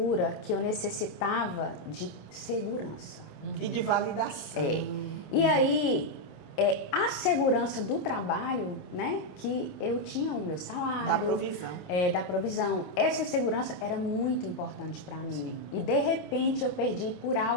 que eu necessitava de segurança. E de validação. E aí, a segurança do trabalho, né? Que eu tinha o meu salário. Da provisão. Da provisão. Essa segurança era muito importante para mim. E de repente eu perdi por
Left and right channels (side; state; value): right; late; 26 ms